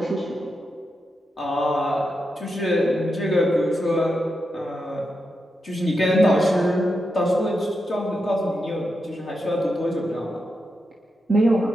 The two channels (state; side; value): normal; both; correlation 0.87